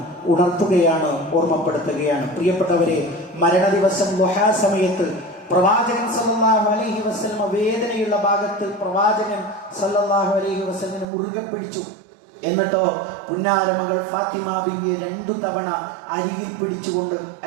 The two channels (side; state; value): left; drops out; at 11.1 s